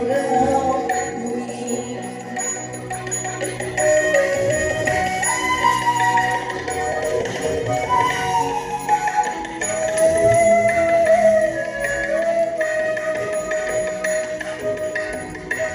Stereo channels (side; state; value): both; identical; correlation 1.00